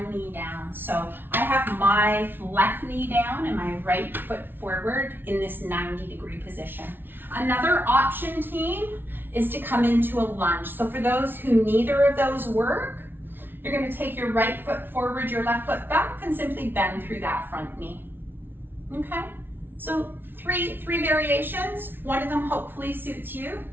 knee down. So I have my left knee down and my right foot forward in this 90-degree position. Another option, team, is to come into a lunge. So for those who neither of those work, you're going to take your right foot forward, your left foot back, and simply bend through that front knee. Okay? So three variations. One of them hopefully suits you.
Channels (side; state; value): left; late; 0.10 ms